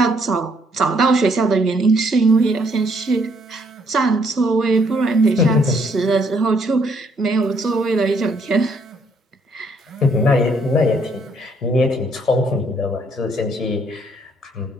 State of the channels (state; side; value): normal; both; correlation 0.68